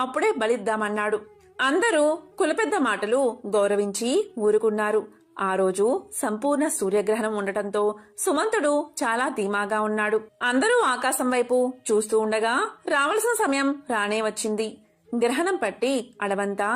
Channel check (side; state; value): both; identical; correlation 1.00